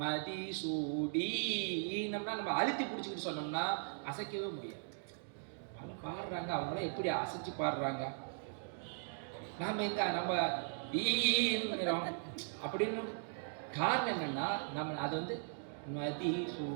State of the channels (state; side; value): silent; left; digital silence